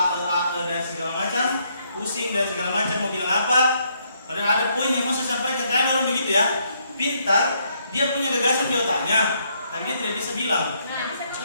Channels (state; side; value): inverted; both; correlation -0.72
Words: dan segala macam, pusing dan segala macam mau bilang apa, padahal ada poin yang mau saya sampaikan. Kadang orang begitu ya, pintar, dia punya gagasan di otaknya, tapi dia tidak bisa bilang.